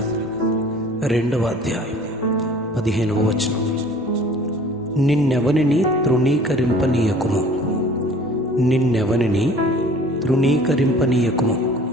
2వ అధ్యాయం 15వ వచనం. నిన్నెవనిని తృణీకరింపనీయకుము, నిన్నెవనిని తృణీకరింపనీయకుము.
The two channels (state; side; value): normal; both; correlation 0.49